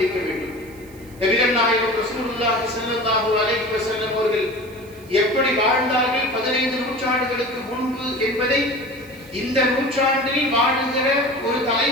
வேண்டும். நபிகள் நாயகம் ரசூலுல்லாஹி ஸல்லல்லாஹு அலைஹி வஸல்லம் அவர்கள் எப்படி வாழ்ந்தார்கள் 15 நூற்றாண்டுகளுக்கு முன்பு என்பதை இந்த நூற்றாண்டில் வாழுகிற ஒரு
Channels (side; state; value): right; noise; hiss, 25 dB below the sound